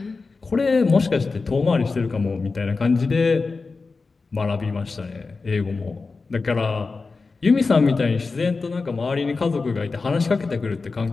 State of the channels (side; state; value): right; quieter; 4.1 dB